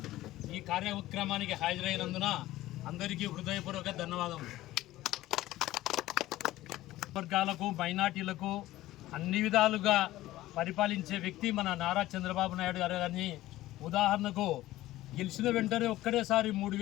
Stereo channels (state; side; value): quieter; right; 16.0 dB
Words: ఈ కార్యక్రమానికి హాజరైనందున అందరికీ హృదయపూర్వక ధన్యవాదములు. వర్గాలకు, మైనార్టీలకు అన్ని విధాలుగా పరిపాలించే వ్యక్తి మన నారా చంద్రబాబు నాయుడు గారు. కానీ ఉదాహరణకు గెలిచిన వెంటనే ఒక్కడేసారి